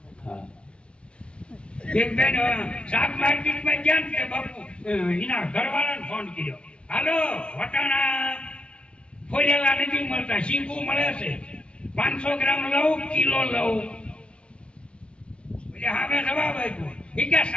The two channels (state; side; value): late; right; 0.059 ms